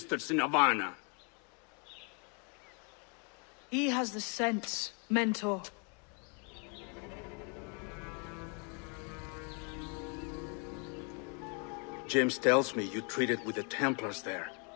in Havana. He has the sense Mentor. James tells me you treated with the Templars there.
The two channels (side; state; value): right; quieter; 36.4 dB